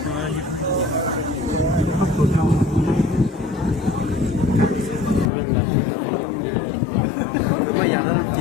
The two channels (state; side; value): drops out; right; at 5.3 s